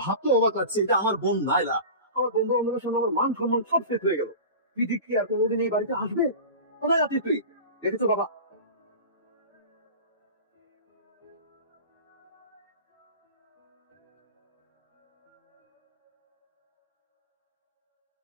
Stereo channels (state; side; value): inverted; both; correlation -0.33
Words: ভাবতে অবাক লাগছে, এটা আমার বোন নাইলা। আমার বন্ধু বান্ধবের সামনে আমার মান সম্মান সব শেষ হয়ে গেল। তুই কি আর কোনোদিন এই বাড়িতে আসবে? কোথায় আছিস তুই? দেখেছো বাবা?